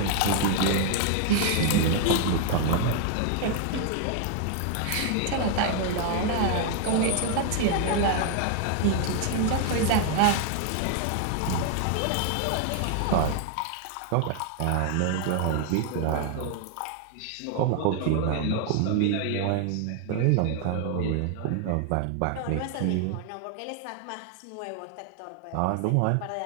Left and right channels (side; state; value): both; different; correlation 0.00